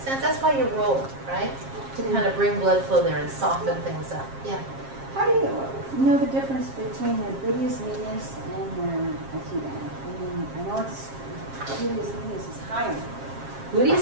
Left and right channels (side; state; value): left; late; 7.4 ms